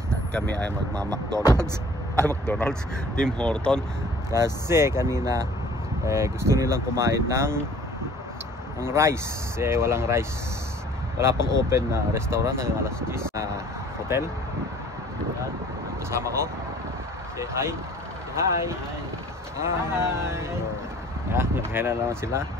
At kami ay magma-McDonald's. McDonald's, Tim Horton. Kasi kanina gusto nilang kumain ng rice. Walang rice. Wala pang open na restaurant hanggang alas 10 na hotel. Ayan, kasama ko. Say hi. Hi. Hi. Ayan, naghain na naman sila.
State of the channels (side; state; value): both; normal; correlation 0.51